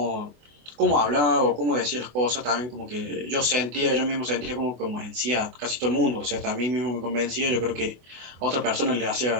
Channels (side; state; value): left; late; 24 ms